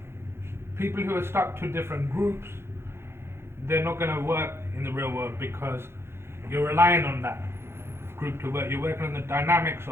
People who are stuck to different groups, they're not going to work in the real world because you're relying on that group to work. You're working on the dynamics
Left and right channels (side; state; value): left; late; 0.12 ms